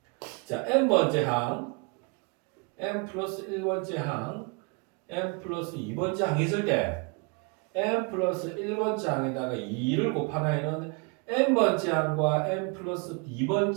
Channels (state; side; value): quieter; left; 32.2 dB